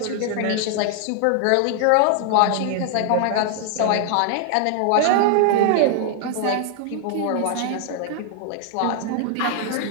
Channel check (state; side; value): different; both; correlation 0.00